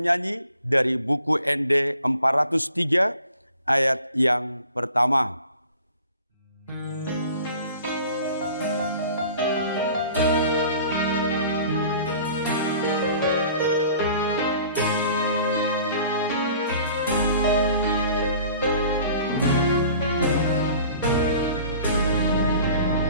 dari buku ND 403 ayat yang pertama.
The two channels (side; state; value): both; inverted; correlation -0.48